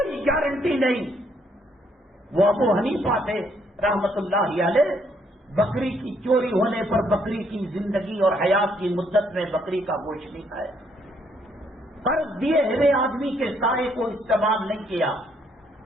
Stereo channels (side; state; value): both; normal; correlation 0.70